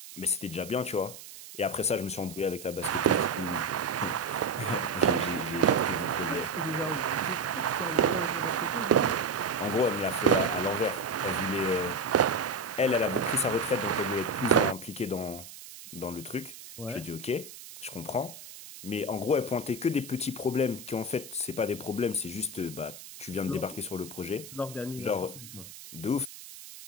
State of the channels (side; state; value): right; noise; hiss, 15 dB below the sound